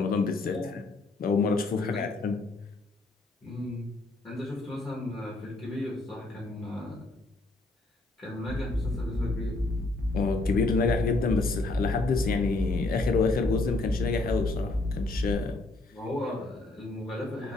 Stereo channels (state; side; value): quieter; right; 3.0 dB